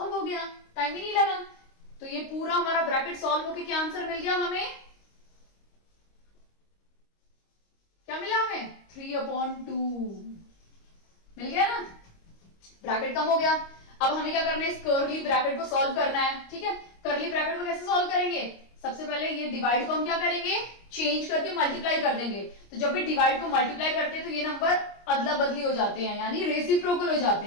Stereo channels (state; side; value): late; right; 25 ms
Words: हो गया, टाइम ही नहीं लगा। तो ये पूरा हमारा ब्रैकेट सॉल्व होके क्या आंसर मिल गया हमें, क्या मिला हमें 3/2 मिल गया ना, ब्रैकेट कम हो गया। अब हमें क्या करना है, इस कर्ली ब्रैकेट को सॉल्व करना है। ठीक है, कर्ली ब्रैकेट को कैसे सॉल्व करेंगे, सबसे पहले ये डिवाइड को हम क्या करेंगे, चेंज करके मल्टीप्लाई कर देंगे। तो जब भी डिवाइड को मल्टीप्लाई करते हैं तो ये नंबर अदला बदली हो जाते हैं, यानी रेसिप्रोकल हो जाते